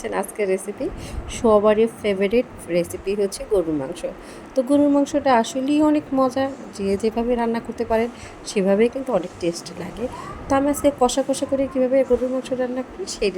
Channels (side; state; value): both; identical; correlation 1.00